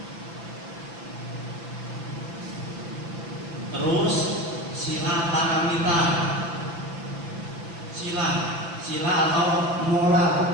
Terus sila paramita, sila atau moral,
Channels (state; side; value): late; left; 5.9 ms